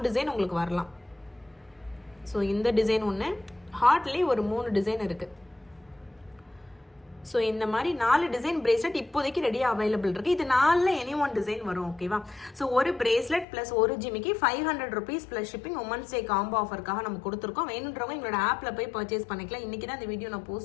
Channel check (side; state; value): right; drops out; at 13.5 s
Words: டிசைன் உங்களுக்கு வரலாம். ஸோ இந்த டிசைன் ஒன்று, ஹார்ட்லேயே ஒரு 3 டிசைன் இருக்குது. ஸோ இந்த மாதிரி 4 டிசைன் பிரேஸ்லெட் இப்போதைக்கு ரெடியாக அவைலபிள் இருக்குது. இது 4ல் எனி ஒன் டிசைன் வரும், ஓகேவா? ஸோ ஒரு பிரேஸ்லெட் ப்ளஸ் ஒரு ஜிமிக்கி 500 rupees plus shipping women's day combo ஆஃபருக்காக நம்ம கொடுத்துருக்கோம். வேணுன்றவங்க எங்களோட ஆப்பில் போய் பர்ச்சேஸ் பண்ணிக்கலாம். இன்றைக்கி தான் இந்த வீடியோ நான்